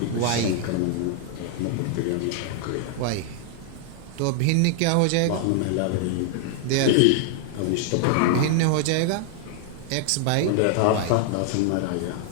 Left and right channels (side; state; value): both; different; correlation 0.00